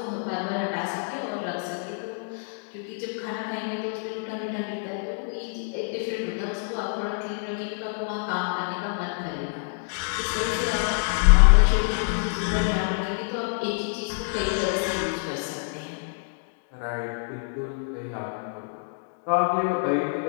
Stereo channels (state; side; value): silent; right; 60 dB below the other